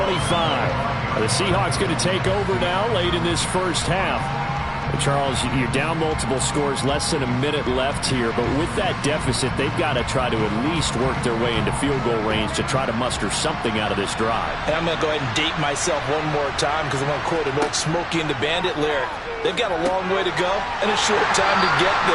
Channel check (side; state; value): both; identical; correlation 1.00